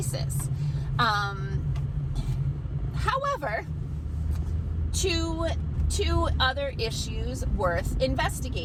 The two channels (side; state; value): both; identical; correlation 1.00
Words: However, two other issues worth